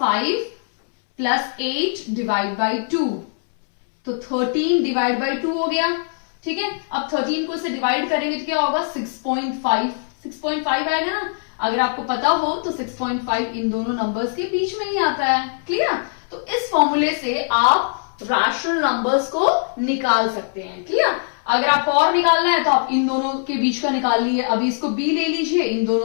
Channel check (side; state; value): right; silent; 65 dB below the other